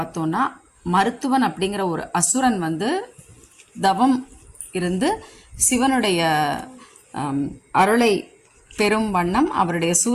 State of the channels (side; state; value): both; identical; correlation 1.00